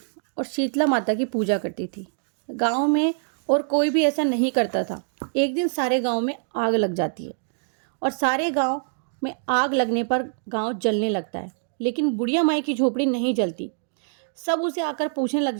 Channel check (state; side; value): silent; left; digital silence